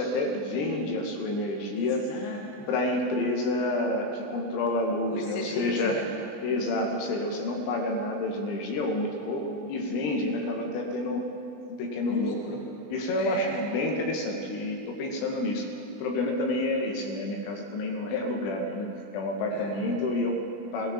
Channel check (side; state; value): right; late; 20 ms